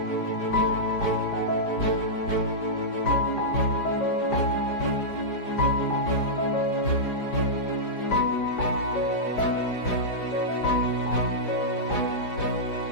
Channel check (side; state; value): right; late; 4.9 ms